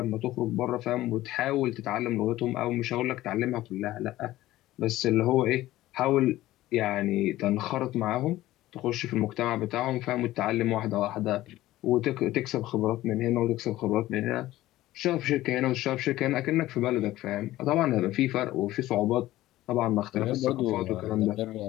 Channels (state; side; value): quieter; right; 15.9 dB